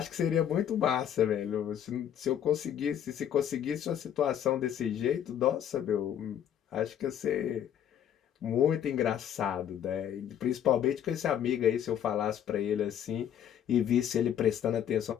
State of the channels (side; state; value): right; quieter; 9.8 dB